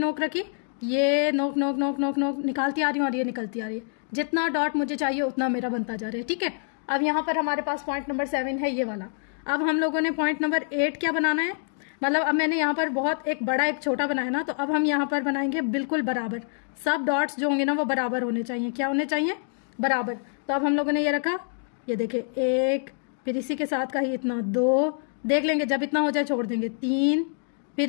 रखी, ये नोक नोक नोक नोक नोक निकालती आ रही हूँ और ये निकलती आ रही है। जितना डॉट मुझे चाहिए उतना मेरा बनता जा रहा है। ठीक है। अब यहाँ पर हमारे पास पॉइंट नंबर 7 है, ये वाला। अब हम लोगों ने पॉइंट नंबर 8 क्या बनाना है, मतलब अब मैंने यहाँ पर बहुत एक बड़ा एक छोटा बनाया ना, तो अब हम यहाँ पर बनाएंगे बिल्कुल बराबर। सब डॉट्स जो होंगे ना वो बराबर होने चाहिए। क्या होने चाहिए, बराबर। तो अब हम लोगों ने ये रखा, ये देखे 1, फिर इसी के साथ का ही इतना 2, देख लेंगे जब इतना हो जाए छोड़ देंगे, 3,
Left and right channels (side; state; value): right; silent; 61 dB below the other